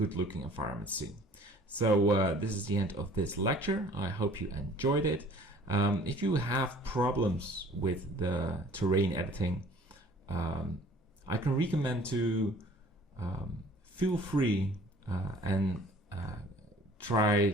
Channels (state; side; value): normal; both; correlation 0.51